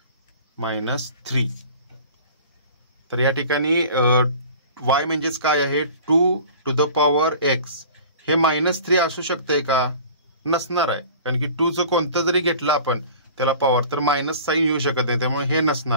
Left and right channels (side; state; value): both; inverted; correlation -0.43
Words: तर या ठिकाणी y म्हणजेच काय आहे 2 to the power x. हे -3 असू शकते का, नसणार आहे, कारण की 2 चं कोणतं जरी घेतलं आपण त्याला पॉवर तर मायनस साईन येऊ शकत नाही, त्यामुळे हे